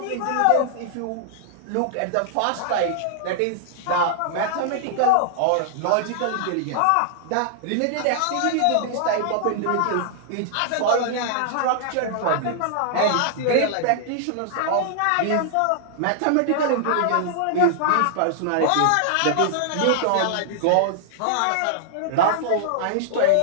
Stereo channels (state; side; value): different; both; correlation -0.01